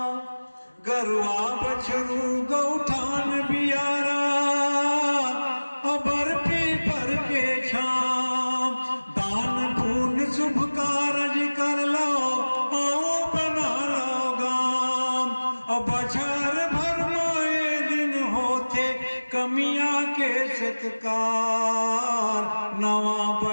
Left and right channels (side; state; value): both; inverted; correlation -1.00